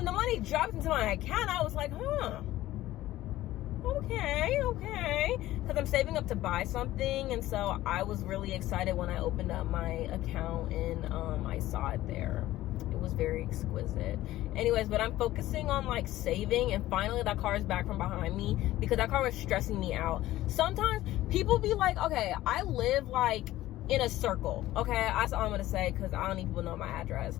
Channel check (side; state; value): right; quieter; 15.5 dB